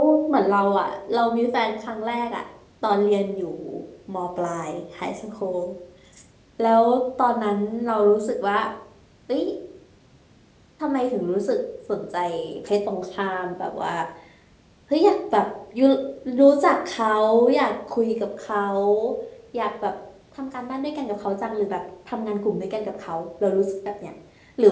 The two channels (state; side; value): identical; both; correlation 1.00